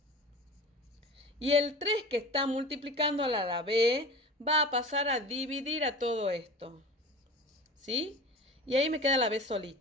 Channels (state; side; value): normal; both; correlation 0.35